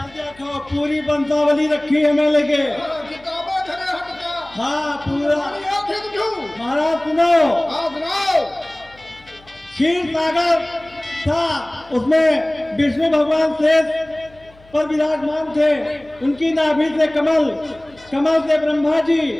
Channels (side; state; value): left; noise; hum, 27 dB below the sound